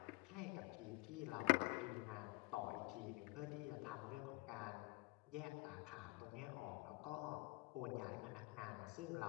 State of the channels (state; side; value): quieter; right; 22.8 dB